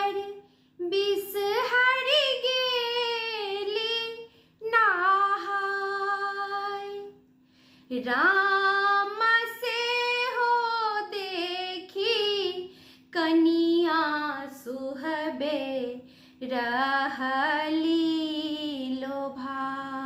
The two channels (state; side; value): identical; both; correlation 1.00